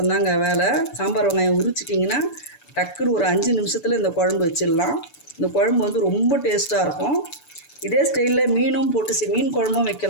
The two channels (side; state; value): right; late; 6.9 ms